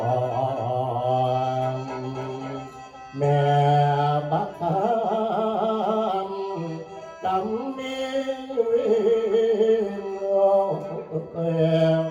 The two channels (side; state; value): both; identical; correlation 1.00